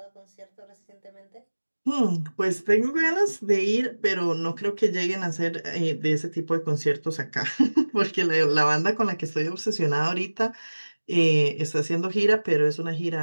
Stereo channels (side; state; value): both; inverted; correlation -1.00